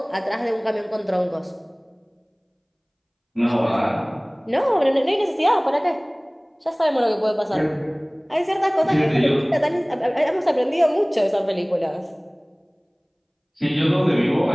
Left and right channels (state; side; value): identical; both; correlation 1.00